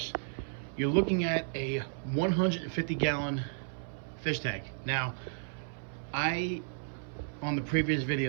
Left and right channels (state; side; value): silent; left; 56 dB below the other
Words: you're looking at a 150-gallon fish tank. Now, on the previous